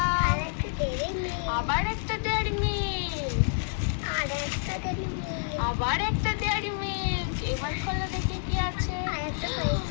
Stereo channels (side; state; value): right; silent; digital silence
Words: আবার একটা ডেয়ারি মিল্ক, আবার একটা ডেয়ারি মিল্ক। এবার খোলো দেখি কি আছে।